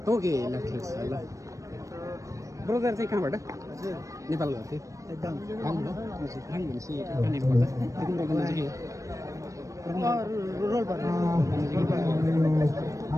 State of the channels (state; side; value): late; left; 0.16 ms